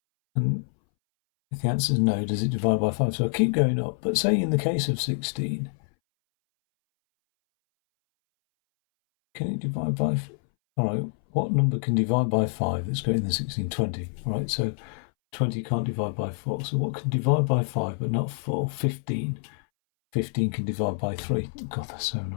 And if the answer is no, does it divide by 5? So I keep going up. But say in the case of 16, can it divide by? All right, what number can divide by 5 that's greater than 16? 20. All right, so 20 can't divide by 4. So what can divide by 5 but not 4? 15. 15 can divide by 3. God, that's so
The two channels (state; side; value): silent; right; 61 dB below the other